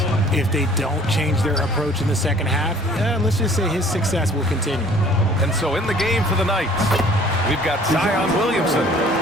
If they don't change their approach in the second half, let's just say his success will continue. And so in the game for the Knights, we've got Zion Williamson,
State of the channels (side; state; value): both; normal; correlation 0.53